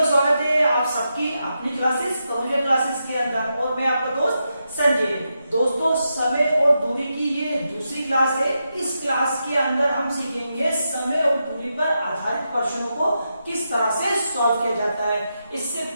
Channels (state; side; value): inverted; both; correlation -0.86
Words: स्वागत है आप सबकी अपनी क्लासेस कंप्यूटर क्लासेस के अंदर और मैं आपका दोस्त संजय। दोस्तों, समय और दूरी की ये दूसरी क्लास है। इस क्लास के अंदर हम सीखेंगे समय और दूरी पर आधारित प्रश्नों को किस तरह से सॉल्व किया जाता है। इससे